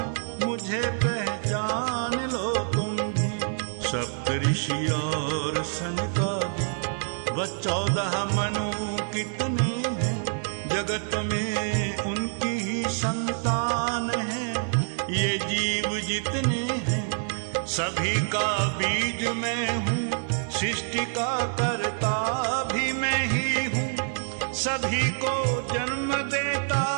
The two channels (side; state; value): left; silent; digital silence